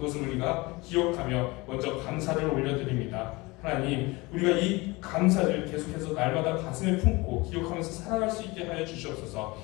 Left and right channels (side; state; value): right; quieter; 23.4 dB